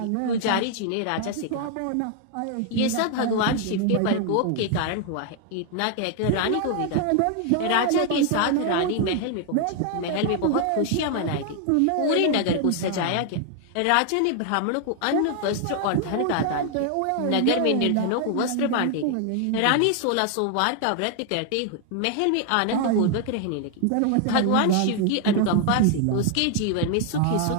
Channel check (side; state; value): both; different; correlation 0.00